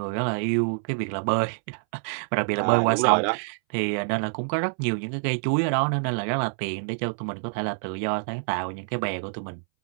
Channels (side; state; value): left; silent; 61 dB below the other